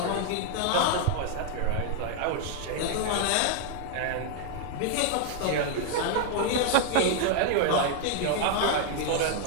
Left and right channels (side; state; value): both; different; correlation 0.00